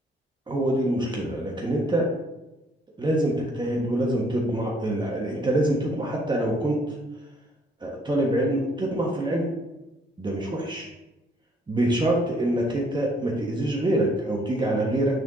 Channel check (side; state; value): both; normal; correlation 0.65